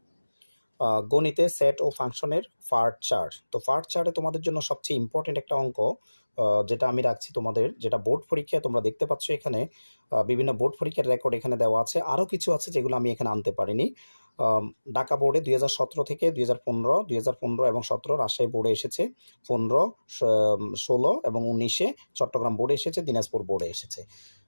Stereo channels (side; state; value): both; inverted; correlation -1.00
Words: গণিতে সেট ও ফাংশনের পার্ট 4। তো পার্ট 4-এ তোমাদের জন্য সবচেয়ে ইম্পর্টেন্ট একটা অঙ্ক যেটা আমি রাখছি তোমাদের, যেটা বোর্ড পরীক্ষায় তোমরা দেখতে পাচ্ছ এখানে বিভিন্ন বোর্ড পরীক্ষার রেকর্ড এখানে দেওয়া আছে। আরও কিছু আছে যেগুলো আমি এখানে আনতে পারিনি। ঢাকা বোর্ডে 2017 থেকে 2015 এবং 17 রাজশাহী বোর্ডে এসেছে, 15, 16 এবং 19-এ চট্টগ্রাম বোর্ডে এসেছে, দিনাজপুর বোর্ডে এসেছে।